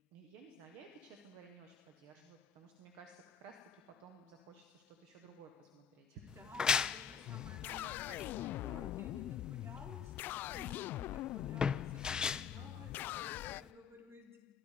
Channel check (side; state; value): right; quieter; 7.1 dB